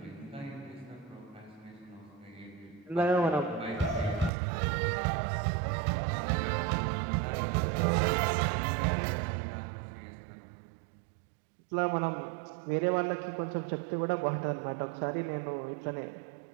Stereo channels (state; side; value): drops out; left; at 4.3 s